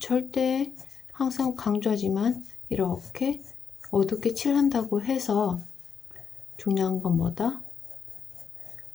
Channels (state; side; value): quieter; right; 6.7 dB